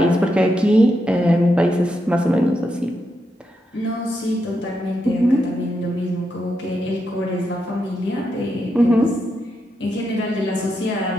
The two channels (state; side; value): normal; both; correlation 0.83